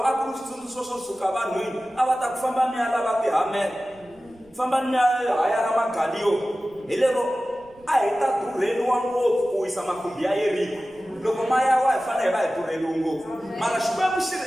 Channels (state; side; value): noise; right; rumble, 29 dB below the sound